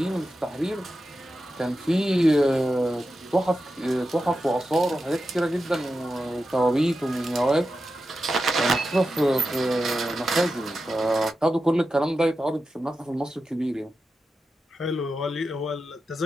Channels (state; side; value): normal; both; correlation 0.90